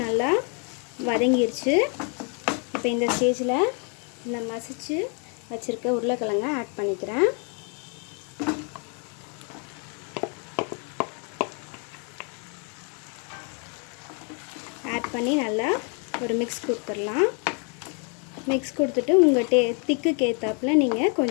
நல்லா வதங்கிருச்சு. இப்போ இந்த ஸ்டேஜில் இந்த மசிச்சு வச்சுருக்க உருளைக்கிழங்க ஆட் பண்ணிக்கிறேன். ஆட் பண்ணி நல்லா ஒரு மிக்ஸ் கொடுத்துடலாம். மிக்ஸ் கொடுத்துட்டு உங்கள் திக்குக்கு ஏற்றாப்புல நீங்கள்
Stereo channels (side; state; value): right; quieter; 38.0 dB